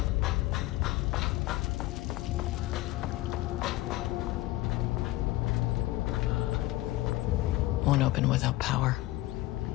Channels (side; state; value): right; quieter; 17.7 dB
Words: Won't open without power.